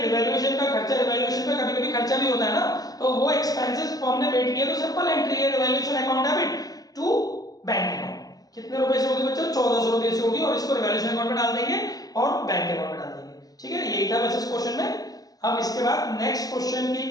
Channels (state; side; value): late; right; 0.18 ms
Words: रिवैल्यूएशन का खर्चा, रिवैल्यूएशन का कभी-कभी खर्चा भी होता है ना, तो वो एक्सपेंसेस फर्म ने पेड किए तो सिंपल एंट्री है revaluation account debit to bank account. कितने रुपए से होगी बच्चों, 1400 रुपए से होगी, और इसको रिवैल्यूएशन अकाउंट में डाल देंगे और बैंक अकाउंट में डाल देंगे। ठीक है, यही था बस इस क्वेश्चन में। अब इसके बाद नेक्स्ट क्वेश्चन की